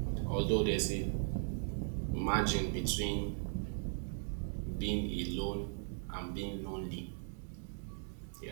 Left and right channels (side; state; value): left; silent; digital silence